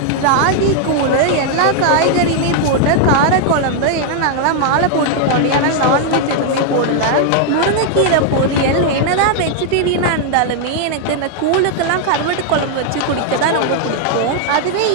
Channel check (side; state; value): both; different; correlation 0.00